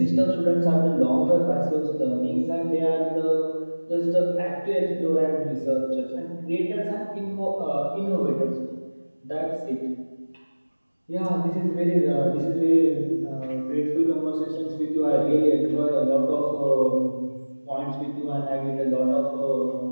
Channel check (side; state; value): both; inverted; correlation -1.00